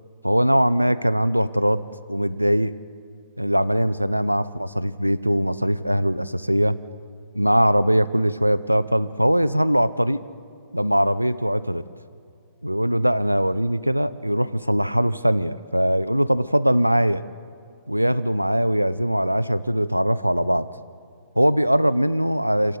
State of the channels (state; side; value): inverted; both; correlation -0.98